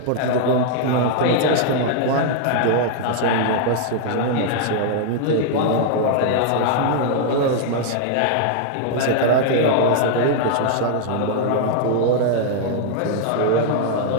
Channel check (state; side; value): different; both; correlation 0.00